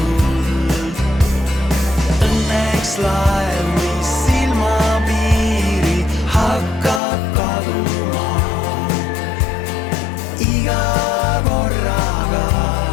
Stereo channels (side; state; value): right; drops out; at 7.0 s